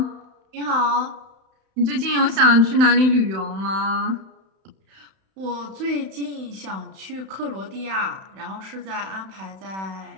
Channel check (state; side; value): late; left; 31 ms